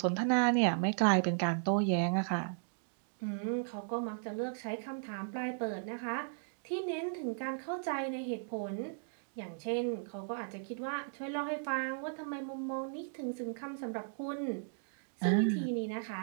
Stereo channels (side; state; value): left; silent; digital silence